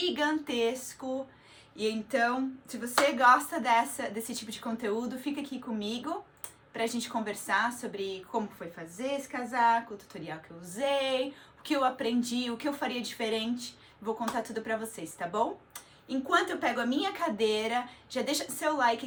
E então, se você gosta desse tipo de conteúdo, fica aqui comigo pra gente conversar sobre como foi fazer esse casaco, o tutorial que eu usei, o que eu aprendi, o que eu faria diferente. Vou contar tudo pra vocês, tá bom? Enquanto eu pego a minha cadeira, já deixa seu like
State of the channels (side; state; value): both; identical; correlation 1.00